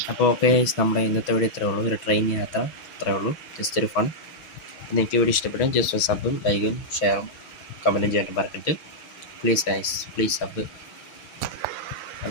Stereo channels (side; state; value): right; late; 6.2 ms